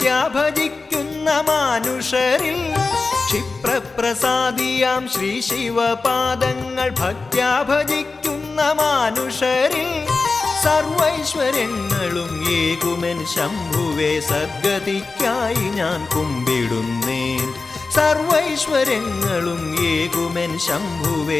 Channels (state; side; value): quieter; right; 3.9 dB